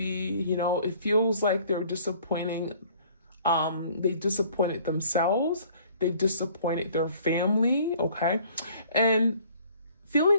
You know, it feels like they're disappointing. They disappointed themselves. They've disappointed their family. Okay. And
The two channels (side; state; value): both; inverted; correlation -0.55